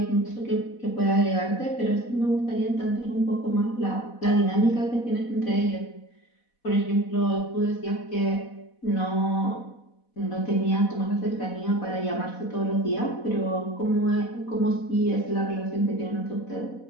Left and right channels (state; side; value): late; right; 4.1 ms